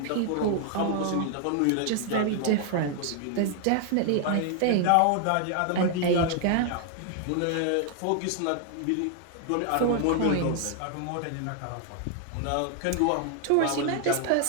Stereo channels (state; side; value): different; both; correlation 0.00